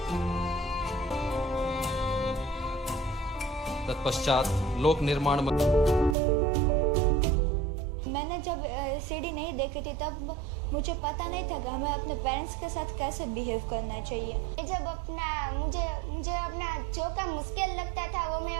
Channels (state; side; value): drops out; left; at 6.2 s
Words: तत्पश्चात लोक निर्माण मैंने जब सीडी नहीं देखी थी तब मुझे पता नहीं था कि हमें अपने पेरेंट्स के साथ कैसे बिहेव करना चाहिए। जब मुझे अपना जो काम मुश्किल लगता था वो मैं